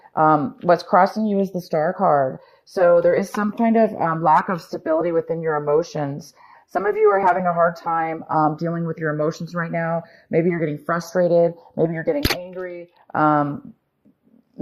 What's crossing you is the Star card. So there is some kind of lack of stability within your emotions. Some of you are having a hard time dealing with your emotions right now. Maybe you're getting frustrated. Maybe you're getting angry.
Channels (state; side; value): identical; both; correlation 1.00